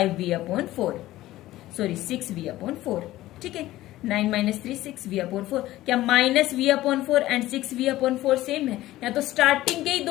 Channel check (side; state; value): right; quieter; 15.9 dB